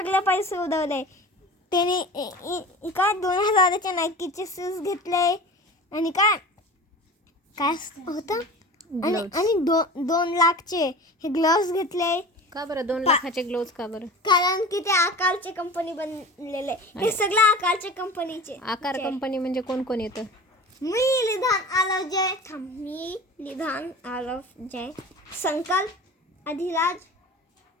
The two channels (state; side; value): normal; both; correlation 0.37